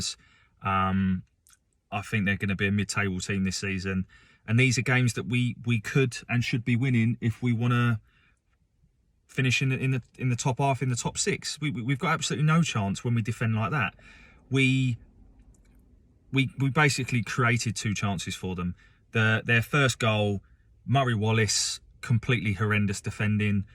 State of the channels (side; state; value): both; identical; correlation 1.00